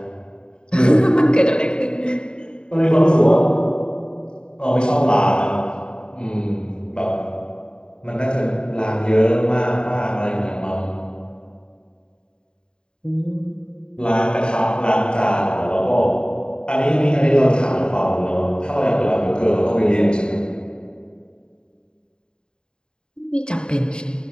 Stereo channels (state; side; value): late; right; 0.049 ms